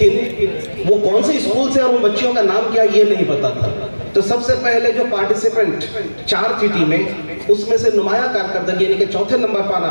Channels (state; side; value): inverted; both; correlation -1.00